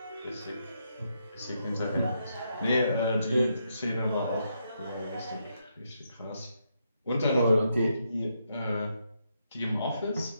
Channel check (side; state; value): both; inverted; correlation -0.80